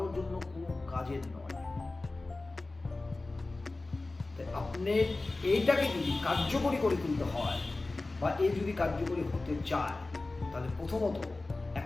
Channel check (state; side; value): quieter; right; 3.2 dB